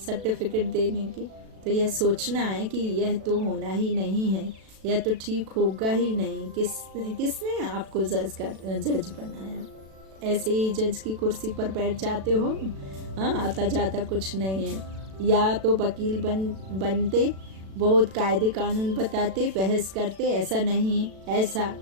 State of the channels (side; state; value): left; late; 37 ms